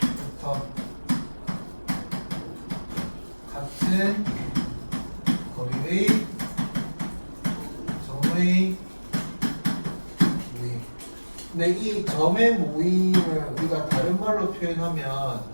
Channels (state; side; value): inverted; both; correlation -1.00